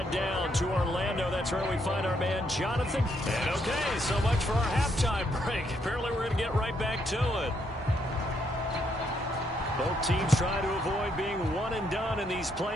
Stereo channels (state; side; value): normal; both; correlation 0.75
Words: down to Orlando. That's where we find our man Jonathan. And okay, so much for our halftime break. Apparently we're going to get right back to it. Both teams try to avoid being one and done in these